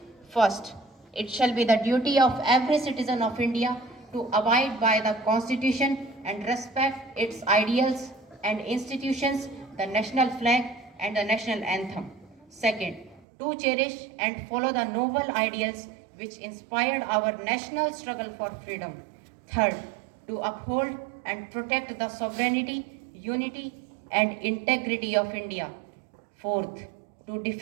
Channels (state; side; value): drops out; left; at 13.2 s